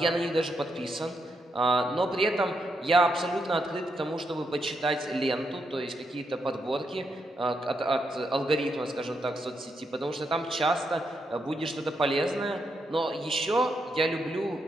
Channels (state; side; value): normal; both; correlation 0.81